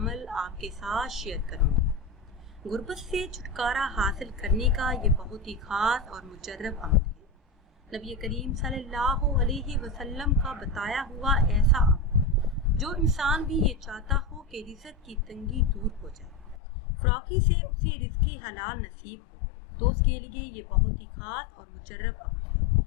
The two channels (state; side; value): drops out; right; at 16.6 s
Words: आपके साथ शेयर करूँगी। गुर्बत से छुटकारा हासिल करने का ये बहुत ही ख़ास और मुजर्रब अमल है। नबी करीम सल्लल्लाहु अलैहि वसल्लम का बताया हुआ ऐसा अमल जो इंसान भी ये चाहता हो कि रिज़्क़ की तंगी दूर हो जाए, फ़राकी से उसे रिज़्क़ हलाल नसीब हो, तो उसके लिए ये बहुत ही ख़ास और मुजर्रब अमल है।